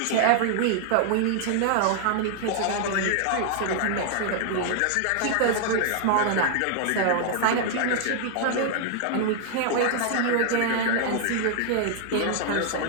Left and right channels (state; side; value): different; both; correlation 0.00